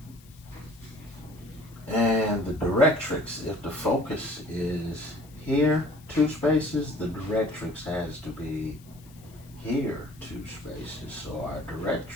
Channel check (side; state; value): left; noise; hiss, 25 dB below the sound